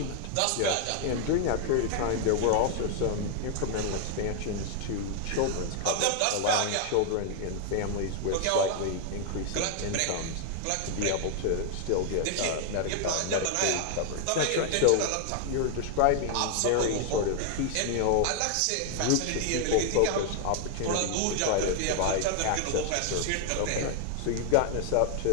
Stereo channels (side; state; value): both; different; correlation 0.00